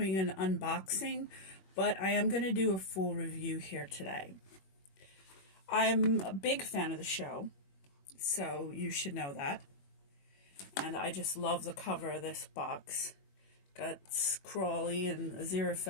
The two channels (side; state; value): right; late; 21 ms